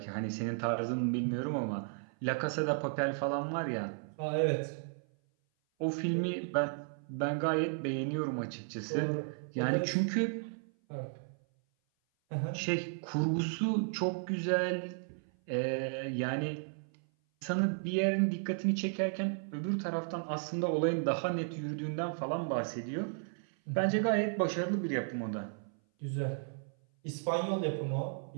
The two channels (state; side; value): silent; left; 55 dB below the other